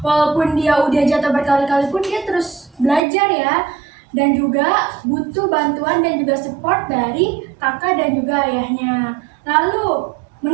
walaupun dia udah jatuh berkali-kali pun dia terus belajar ya. Dan juga butuh bantuan dan juga support dari kakak dan juga ayahnya. Lalu,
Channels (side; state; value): left; drops out; at 3.0 s